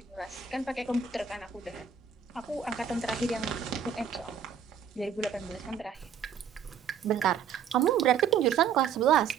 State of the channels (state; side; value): quieter; left; 7.5 dB